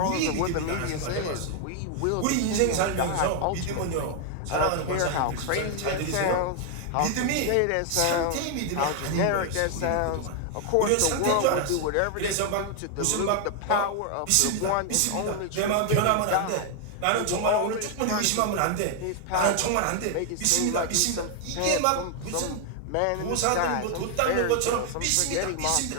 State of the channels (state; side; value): different; both; correlation 0.00